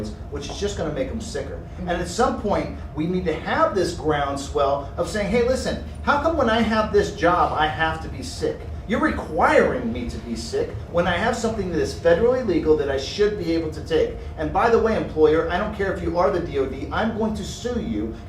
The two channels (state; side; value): identical; both; correlation 1.00